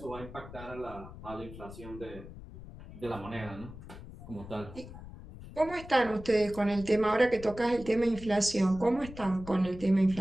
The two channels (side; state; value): left; noise; rumble, 14 dB below the sound